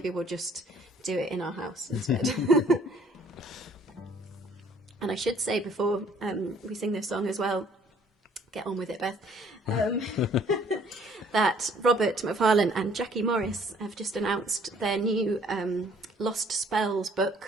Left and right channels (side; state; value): both; normal; correlation 0.59